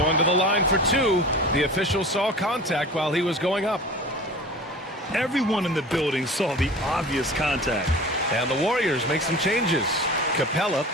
to the line for two. The official saw contact while he was going up. Everyone in the building saw the obvious contact. And the Warriors make some changes. Capella,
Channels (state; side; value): normal; both; correlation 0.38